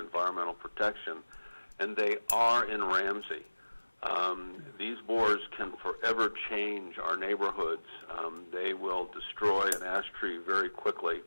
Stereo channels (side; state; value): both; inverted; correlation -1.00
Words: Protection, and they are in Ramsey. These borers can forever change our neighborhoods. They will destroy an ash tree very quickly.